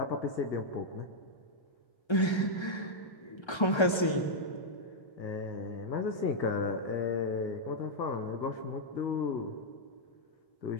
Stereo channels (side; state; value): right; late; 1.3 ms